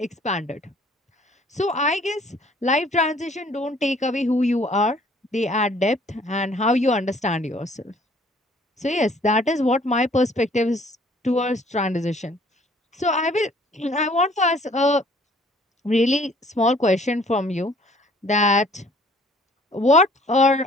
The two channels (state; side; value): normal; both; correlation 0.57